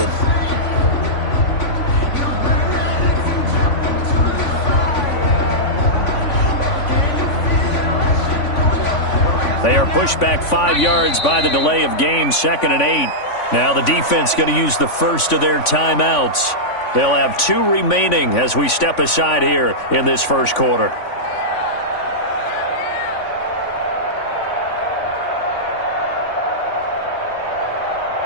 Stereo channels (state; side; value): late; right; 3.5 ms